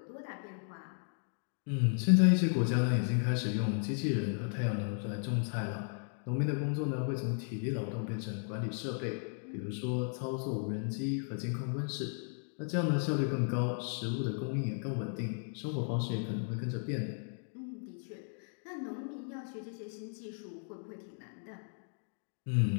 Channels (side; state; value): right; silent; 54 dB below the other